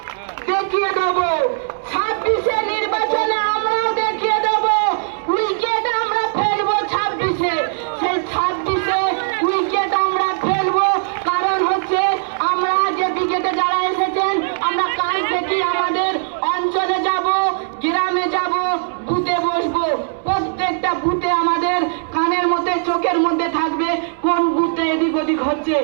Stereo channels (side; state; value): left; silent; digital silence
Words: দেখিয়ে দেবো। 26-এ নির্বাচনে আমরাও দেখিয়ে দেবো। উইকেট আমরা ফেলবো 26-এ, সেই 26-এ উইকেট আমরা ফেলবো। কারণ হচ্ছে আমরা যে উইকেটে যারা এসেছেন, আমরা কাল থেকে আমাদের অঞ্চলে যাব, গ্রামে যাব, বুথে বসবো। প্রত্যেকটা বুথে আমাদের কানের মধ্যে, চোখের মধ্যে থাকবে কোন বুথে এদিক ওদিক হচ্ছে।